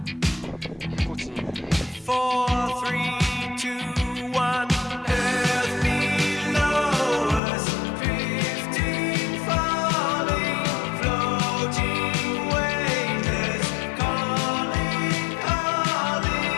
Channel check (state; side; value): drops out; right; at 7.4 s